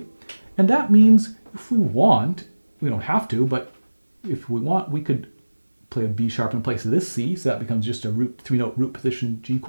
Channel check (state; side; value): inverted; both; correlation -1.00